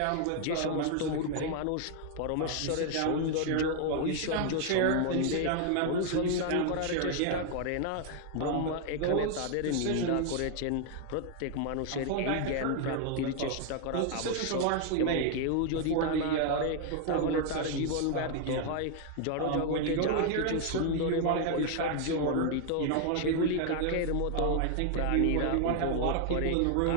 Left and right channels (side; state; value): both; different; correlation 0.00